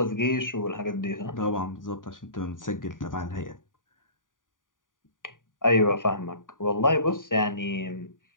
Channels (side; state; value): right; late; 0.88 ms